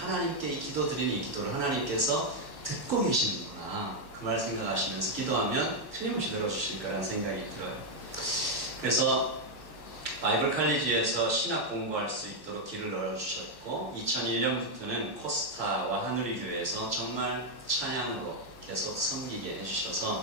이 기도 드리는 이 기도를 하나님께서 듣고 계시는구나, 그 말 생각하시면서 기도하면 틀림없이 들어주실 거라는 생각이 들어요. 그래서 바이블 칼리지에서 신학 공부할 수 있도록 길을 열어주셨고, 2001년부터는 코스타와 하누리 교회에서 정말 찬양으로 계속 섬기게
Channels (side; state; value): right; late; 1.1 ms